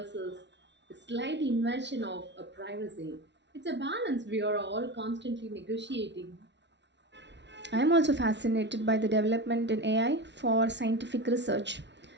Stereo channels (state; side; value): late; left; 0.51 ms